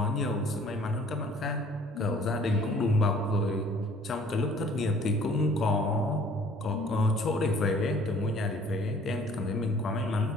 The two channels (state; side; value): normal; both; correlation 0.54